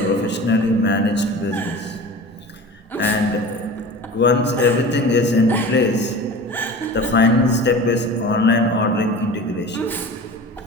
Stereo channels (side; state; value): both; normal; correlation 0.36